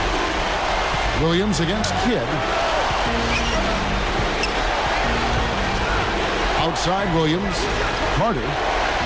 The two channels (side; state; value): both; identical; correlation 1.00